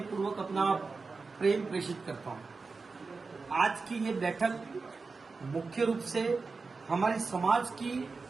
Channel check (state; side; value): quieter; left; 4.3 dB